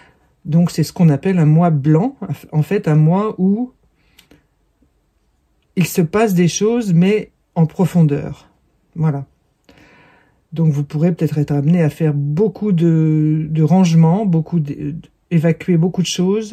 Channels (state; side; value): identical; both; correlation 1.00